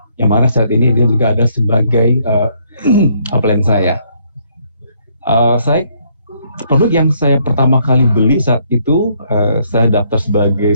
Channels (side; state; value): both; inverted; correlation -0.69